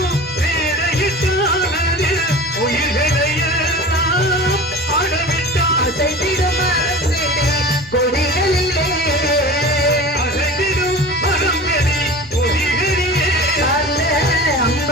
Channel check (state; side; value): normal; both; correlation 0.36